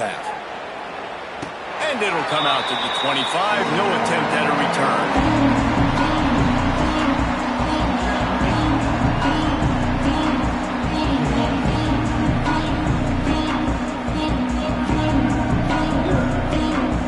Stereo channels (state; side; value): identical; both; correlation 1.00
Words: And it'll come out to the 25. No attempt at a return.